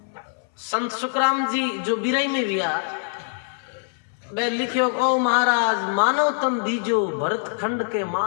संत सुखराम जी जो बिरई में विया वे लिखियो, ओ महाराज मानव तन दीजो भरत खंड के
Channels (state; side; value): silent; right; 60 dB below the other